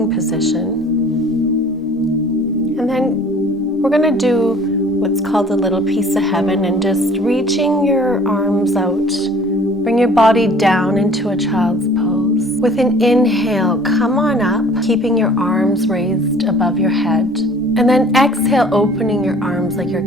position. And then we're going to do what's called a little piece of heaven, and just reaching your arms out, bring your body down into a child's pose. With an inhale, come on up, keeping your arms raised above your head. And then exhale, opening your arms like you're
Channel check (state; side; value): normal; both; correlation 0.51